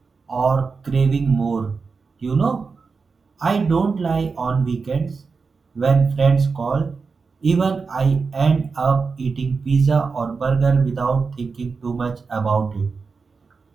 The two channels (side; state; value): left; quieter; 4.8 dB